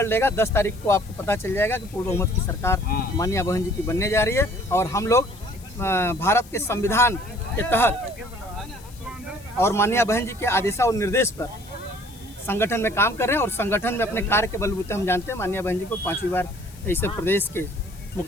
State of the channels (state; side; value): noise; left; hiss, 22 dB below the sound